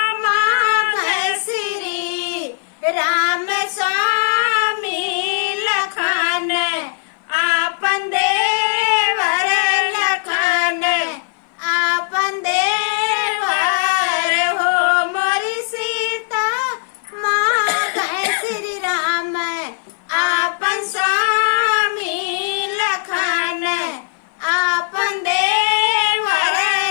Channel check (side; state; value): right; silent; 57 dB below the other